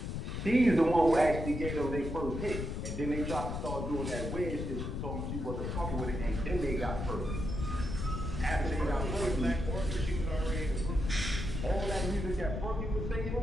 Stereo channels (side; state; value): left; noise; rumble, 4 dB below the sound